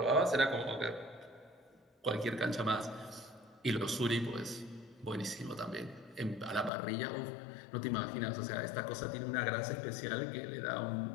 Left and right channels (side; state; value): right; drops out; at 6.7 s